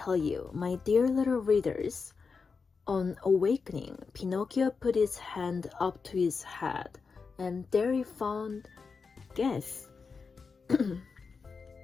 you, my dear little readers. On awakening, Pinocchio put his hand up to his head, and there he found, guess.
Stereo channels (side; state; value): right; quieter; 5.0 dB